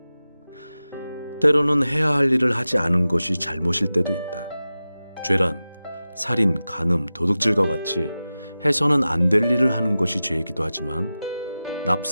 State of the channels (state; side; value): inverted; both; correlation -0.95